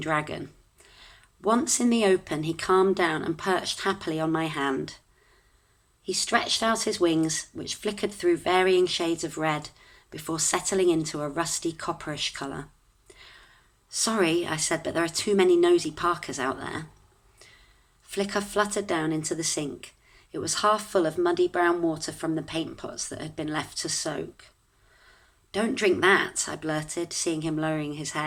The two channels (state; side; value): identical; both; correlation 1.00